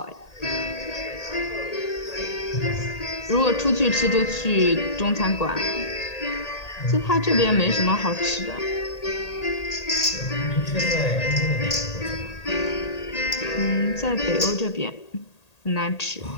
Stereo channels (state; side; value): late; right; 1.8 ms